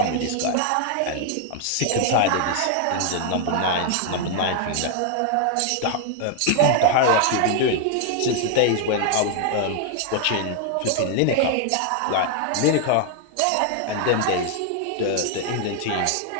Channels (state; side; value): different; both; correlation 0.00